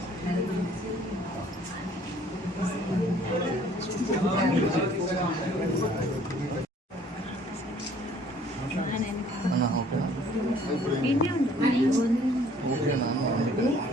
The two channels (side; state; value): both; normal; correlation 0.57